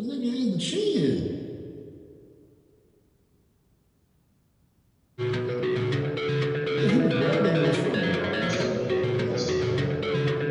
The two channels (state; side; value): identical; both; correlation 1.00